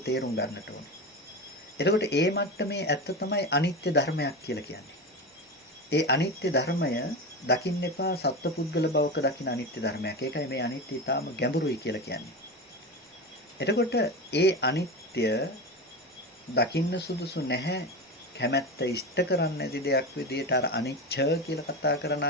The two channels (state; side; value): normal; both; correlation 0.23